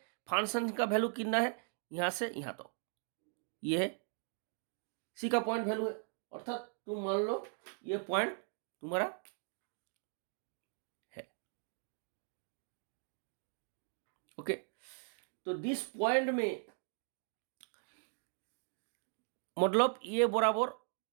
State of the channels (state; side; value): silent; left; 52 dB below the other